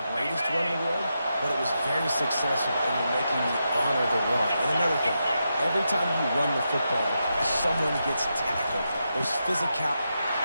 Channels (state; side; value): inverted; both; correlation -0.86